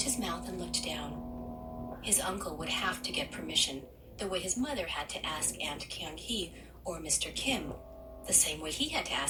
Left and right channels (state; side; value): identical; both; correlation 1.00